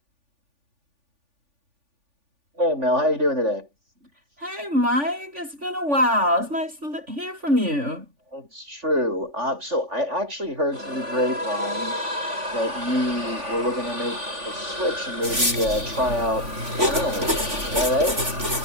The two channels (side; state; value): left; late; 3.5 ms